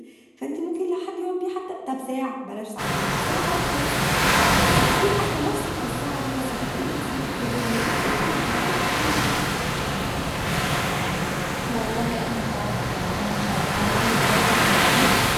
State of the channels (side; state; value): both; identical; correlation 1.00